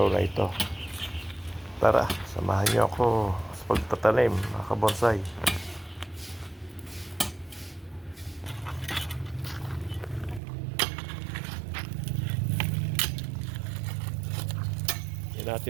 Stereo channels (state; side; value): drops out; left; at 10.4 s